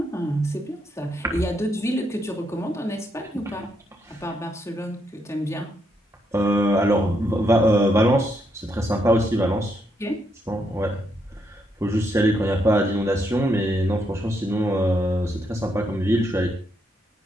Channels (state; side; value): normal; both; correlation 0.78